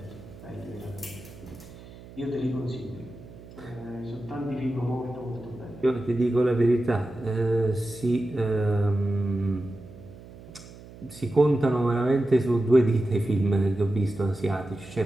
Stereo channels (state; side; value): noise; right; hum, 18 dB below the sound